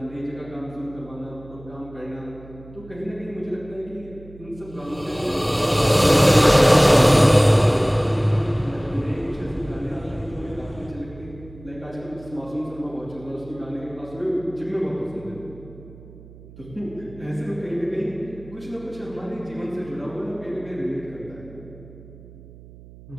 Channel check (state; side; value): noise; right; hum, 19 dB below the sound